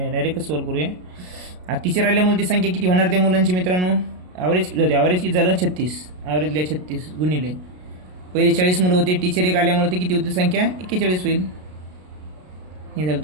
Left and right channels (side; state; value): left; late; 33 ms